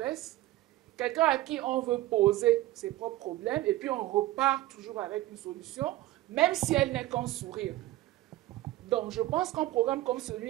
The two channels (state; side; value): quieter; left; 16.4 dB